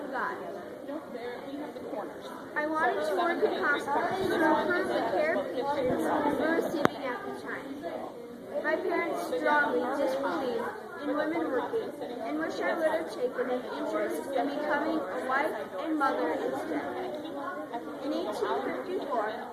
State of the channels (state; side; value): identical; both; correlation 1.00